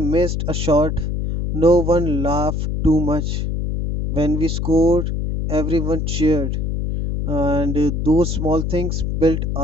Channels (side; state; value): left; noise; hum, 1 dB below the sound